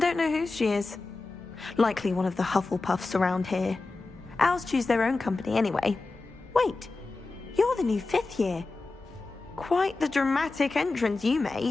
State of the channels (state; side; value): quieter; right; 3.5 dB